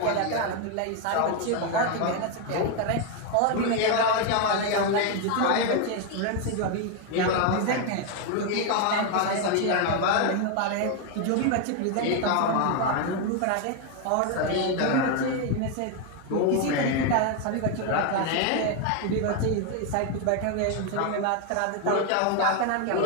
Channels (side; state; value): both; different; correlation 0.01